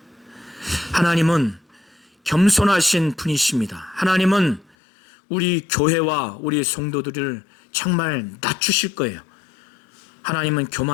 하나님은 겸손하신 분이십니다. 하나님은 우리 교회와 우리 성도들을 정말 낮추실 거예요. 하나님은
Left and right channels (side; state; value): right; drops out; at 4.7 s